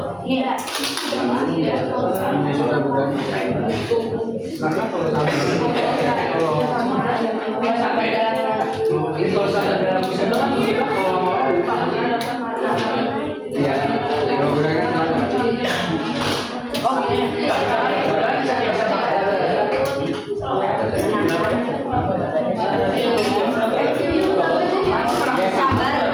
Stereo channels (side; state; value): both; identical; correlation 1.00